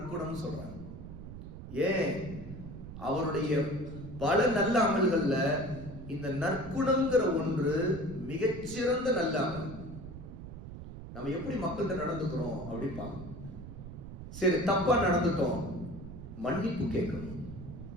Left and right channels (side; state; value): right; noise; rumble, 12 dB below the sound